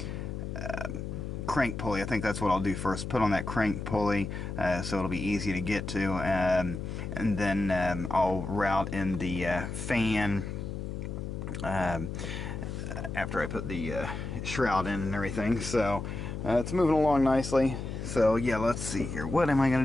crank pulley. I think that's what I'll do first. Put on that crank pulley so it'll be easy to get to, and then I'll route in the fan after I put the shroud in and everything. So it's moving along nicely. So yeah, let's see here. What am I going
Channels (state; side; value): noise; left; hum, 6 dB below the sound